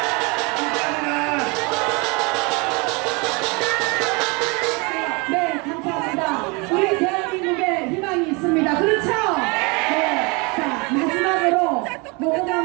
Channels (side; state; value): left; quieter; 29.1 dB